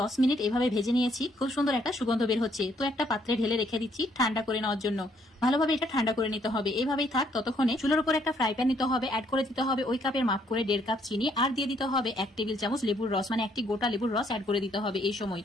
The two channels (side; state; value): both; normal; correlation 0.68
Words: মিনিট এভাবে ভেজে নিয়েছি। খুব সুন্দর একটা সুগন্ধ বের হচ্ছে। তো একটা পাত্রে ঢেলে রেখে দিচ্ছি ঠান্ডা করে নেওয়ার জন্য। ভালোভাবে এটা ঠান্ডা করে নিতে হবে। এইভাবেই থাক ততক্ষণে চুলোর উপর একটা ফ্রাই প্যান নিতে হবে। অ্যাড করে দিতে হবে ওই কাপের মাপ করে 1.5 কাপ চিনি। আর দিয়ে দিতে হবে 1 টেবিল চামচ লেবুর রস, মানে একটি গোটা লেবুর রস অ্যাড করে দিতে হবে এই সময়।